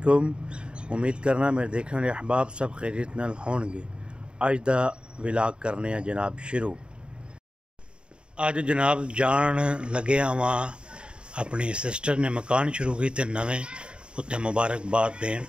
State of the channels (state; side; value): late; left; 0.052 ms